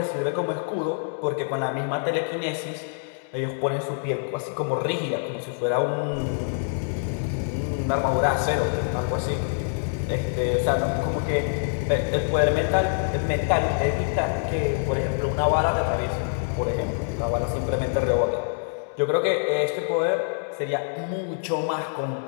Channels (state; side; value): silent; right; digital silence